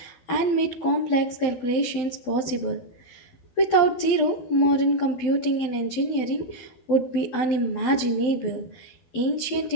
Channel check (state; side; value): late; right; 12 ms